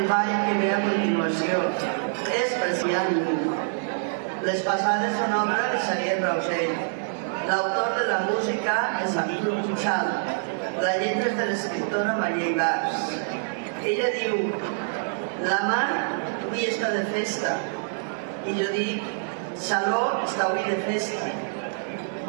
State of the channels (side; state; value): left; silent; digital silence